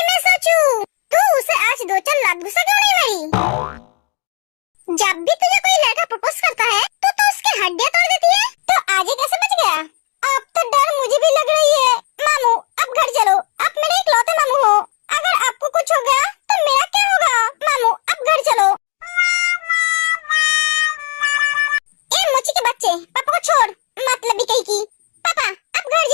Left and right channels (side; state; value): right; quieter; 33.7 dB